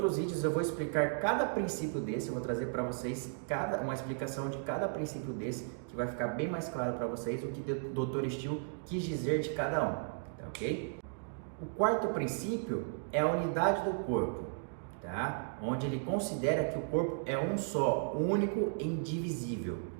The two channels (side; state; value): left; silent; digital silence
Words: vídeos eu vou explicar cada princípio desse, eu vou trazer para vocês uma explicação de cada princípio desse, que vai ficar bem mais claro para vocês o que o Dr. Still quis dizer de cada um, tá ok? O quarto princípio é a unidade do corpo, tá? Onde ele considera que o corpo é um só, único e indivisível,